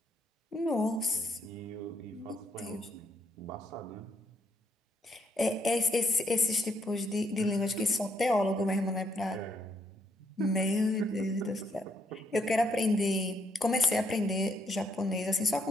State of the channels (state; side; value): normal; both; correlation 0.73